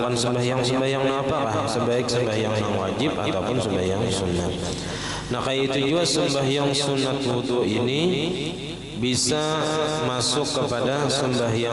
sembahyang apakah? Sebaik sembahyang yang wajib ataupun sembahyang sunat. Nah, kayak itu juga sembahyang sunat wudu ini bisa masuk kepada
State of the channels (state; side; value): identical; both; correlation 1.00